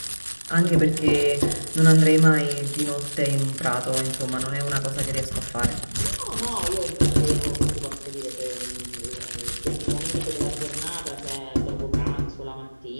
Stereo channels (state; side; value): inverted; both; correlation -1.00